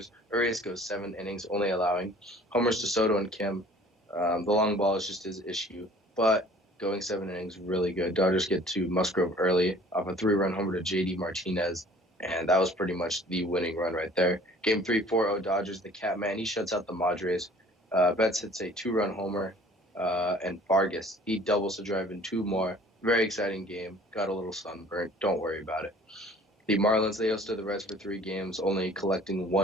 Urias goes 7 innings, only allowing homers to Soto and Kim. The long ball is just his issue, but going 7 innings, really good. Dodgers get to Musgrove early off a 3-run homer to J.D. Martinez, and that was pretty much the winning run right there. Game 3, 4-0 Dodgers. The Catman, he shuts out the Padres. Betts hits a 2-run homer, and Vargas, he doubles to drive in 2 more. Very exciting game. Got a little sunburnt. Don't worry about it. The Marlins, they hosted the Reds for 3 games, only collecting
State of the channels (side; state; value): both; normal; correlation 0.51